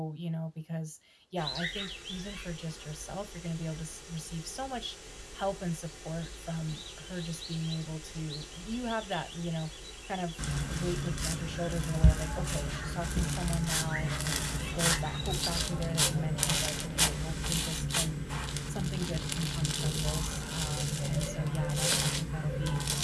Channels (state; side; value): identical; both; correlation 1.00